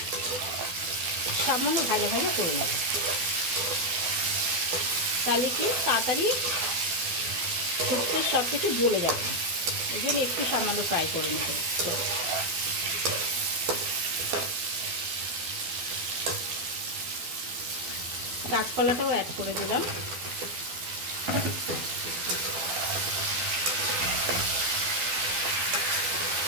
সামান্য ভাজা ভাজা করে নেব। তাহলে কি তাড়াতাড়ি শুক্তোর সব কিছু গলে যাবে, এই জন্য একটু সামান্য ফ্রাই করে নেব। কাঁচকলাটাও অ্যাড করে দিলাম।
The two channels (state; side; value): late; left; 12 ms